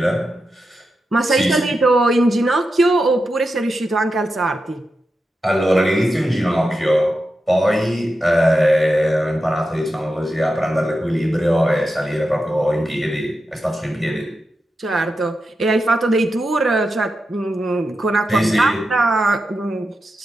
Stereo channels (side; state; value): both; normal; correlation 0.89